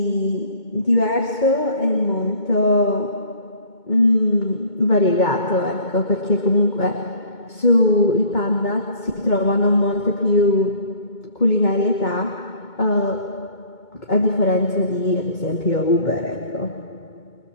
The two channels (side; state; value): right; late; 2.2 ms